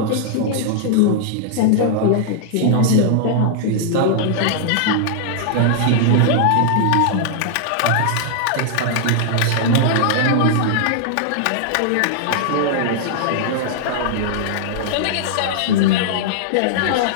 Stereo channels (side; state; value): both; different; correlation -0.01